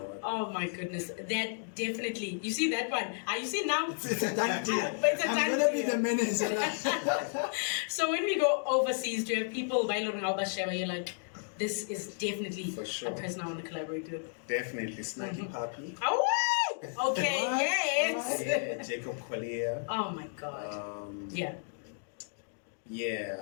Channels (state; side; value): silent; right; digital silence